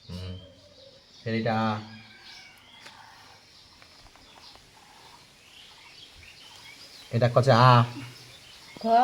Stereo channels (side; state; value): both; identical; correlation 1.00